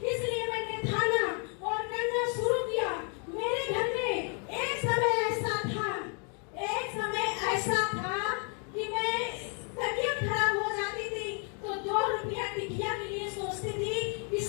इसलिए मैंने खाना और करना शुरू किया। मेरे घर में एक समय ऐसा था कि मैं तबीयत खराब हो जाती थी तो 2 रुपया टिकिया के लिए सोचती थी कि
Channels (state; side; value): quieter; right; 39.5 dB